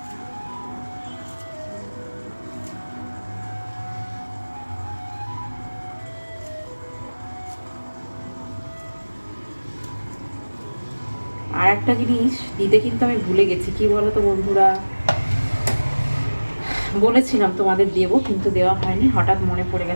আর একটা জিনিস দিতে কিন্তু আমি ভুলে গেছি, কি বলো তো বন্ধুরা, বলেছিলাম তোমাদের দেবো, কিন্তু দেওয়া হয়নি, হঠাৎ মনে পড়ে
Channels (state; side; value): inverted; both; correlation -1.00